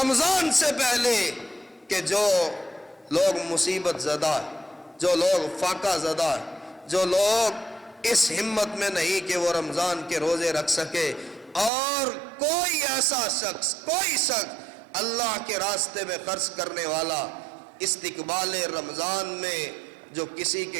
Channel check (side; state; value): left; drops out; at 11.7 s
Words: سے پہلے کہ جو لوگ مصیبت زدہ، جو لوگ فاقہ زدہ، جو لوگ اس ہمت میں نہیں کہ وہ رمضان کے روزے رکھ سکے، اور کوئی ایسا شخص، کوئی شخص اللہ کے راستے میں خرچ کرنے والا استقبال رمضان میں جو کسی کے